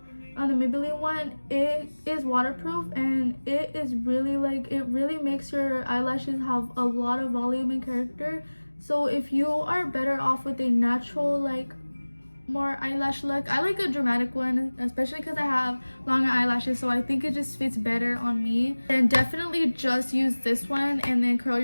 the Maybelline one, it is waterproof, and it is really like, it really makes your eyelashes have a lot of volume and character. So if you are better off with a natural like more eyelash look, I like a dramatic one, especially because I have longer eyelashes, so I think it just fits better on me. And definitely just use this one and then curl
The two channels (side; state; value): both; inverted; correlation -1.00